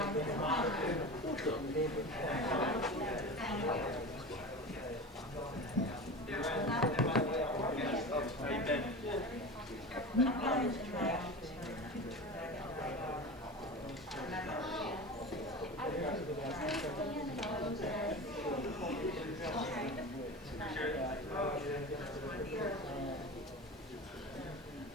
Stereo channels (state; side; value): normal; both; correlation 0.30